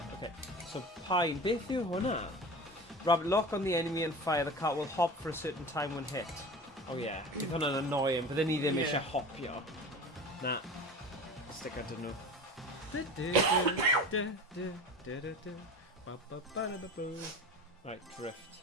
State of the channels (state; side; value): normal; both; correlation 0.34